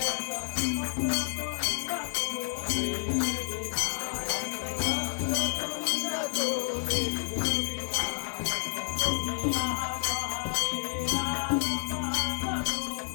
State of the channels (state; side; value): silent; right; 58 dB below the other